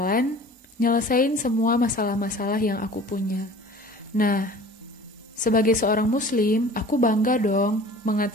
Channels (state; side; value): normal; both; correlation 0.44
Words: nyelesain semua masalah-masalah yang aku punya. Nah, sebagai seorang muslim, aku bangga dong